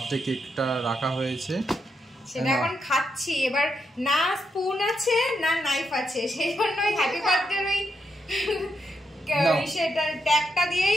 কেকটা রাখা হয়েছে, সেটা এখন খাচ্ছি। এবার না স্পুন আছে না নাইফ আছে, সেই জন্য ওই হ্যাপি বার্থডে ওই সেটা ট্যাগটা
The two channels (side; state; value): both; normal; correlation 0.82